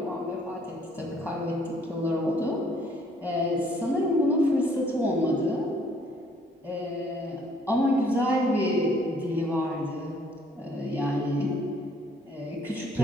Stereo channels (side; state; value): both; normal; correlation 0.63